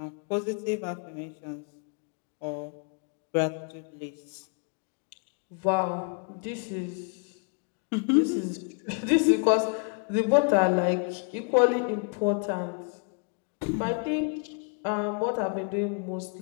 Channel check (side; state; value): right; quieter; 38.1 dB